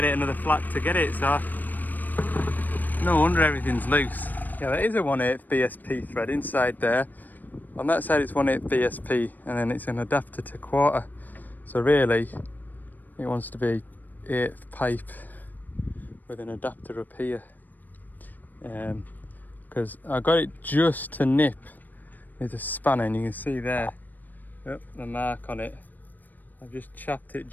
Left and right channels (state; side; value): late; right; 0.086 ms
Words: it another flat to get it, so no wonder everything's loose. Yeah, there is a 1/8 VSP thread inside there. On that side it's 1/8 VSP, and then it's an adapter to 1/4. So really it wants to be 1/8 pipe with an adapter up here. Because I got it just to nip with a spanner, and you can see there, yep, the mark on it. I've just chopped it